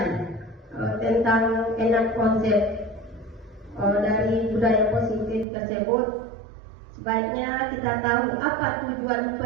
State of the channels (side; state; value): left; drops out; at 5.5 s